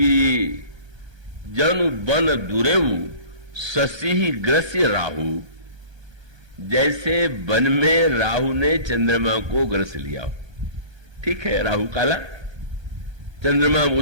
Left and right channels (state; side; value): late; left; 1.3 ms